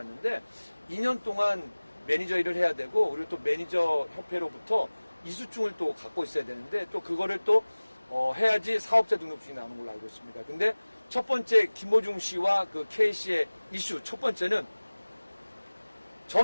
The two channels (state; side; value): inverted; both; correlation -1.00